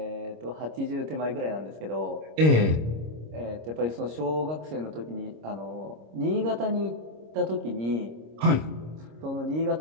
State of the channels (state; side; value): late; left; 26 ms